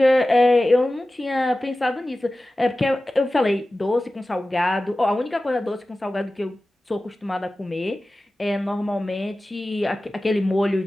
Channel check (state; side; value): normal; both; correlation 0.96